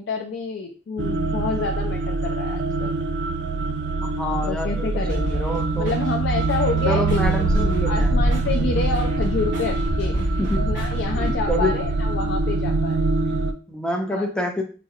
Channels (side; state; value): both; normal; correlation 0.56